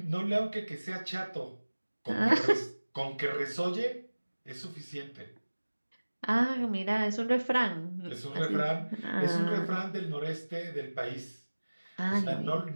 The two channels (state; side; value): inverted; both; correlation -1.00